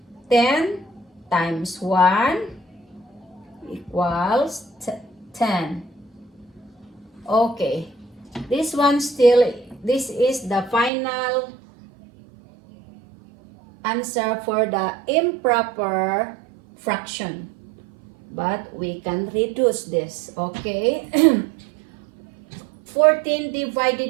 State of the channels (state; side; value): drops out; left; at 10.9 s